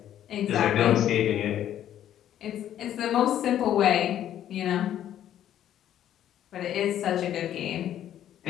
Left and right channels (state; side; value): quieter; right; 11.2 dB